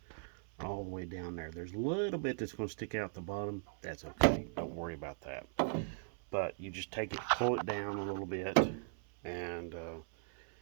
all the way down there. There's a little bit that's going to stick out the bottom. That's okay. Don't worry about that. But you just take it, pull it down a little bit, and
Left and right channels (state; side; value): silent; left; 52 dB below the other